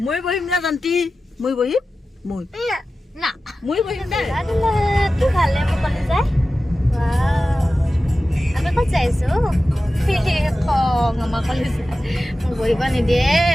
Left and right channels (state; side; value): normal; both; correlation 0.94